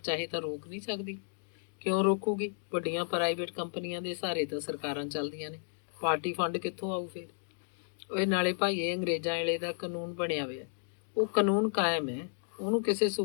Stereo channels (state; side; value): silent; right; digital silence